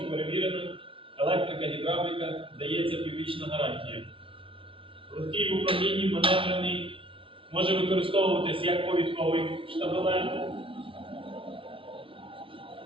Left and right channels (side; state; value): left; late; 0.25 ms